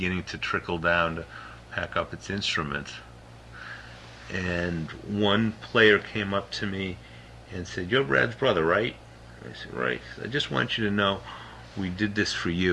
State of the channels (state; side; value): identical; both; correlation 1.00